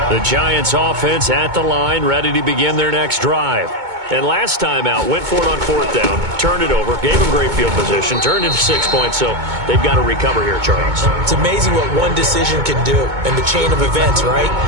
The Giants offense at the line, ready to begin their next drive. And last time out, went for it on 4th down, turned it over, gave them great field position, turned into 6 points, so they've got to recover here, Charles. It's amazing what one decision can do in the chain of events, right?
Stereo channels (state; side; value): late; left; 2.2 ms